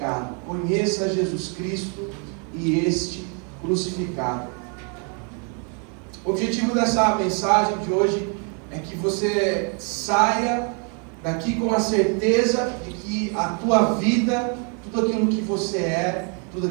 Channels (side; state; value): left; quieter; 39.0 dB